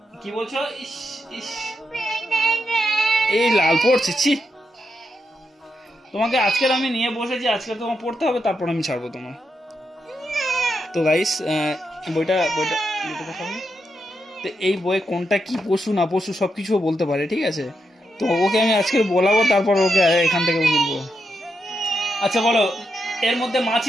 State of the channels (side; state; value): both; normal; correlation 0.83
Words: কি বলছো? ইস ইস এই লাল পড়ছে, ছি। তোমাকে আজকের আমি নিয়ে বসেছি, আজকে তোমার পড়তে হবে, তারপর আমি ছাড়বো তোমার। তো গাইস বইটা দেখাবো। তো এই বই কোনটা কি পশু না পশু সবকিছু বলতে পারে, ঠিক আছে? তো ওকে আমি আজকে বলাবো, তারপর ওকে এখান থেকে বলবো। আচ্ছা বলো, এর মধ্যে